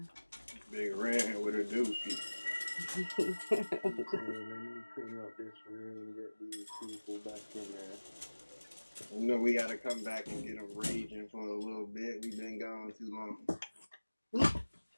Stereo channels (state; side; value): inverted; both; correlation -1.00